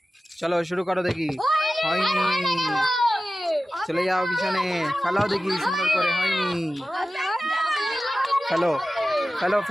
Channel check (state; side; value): normal; both; correlation 0.95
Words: চলো শুরু করো দেখি, হয়নি চলে যাও পিছনে। ফেলাও দেখি সুন্দর করে, হয়নি ফেলো ফেলো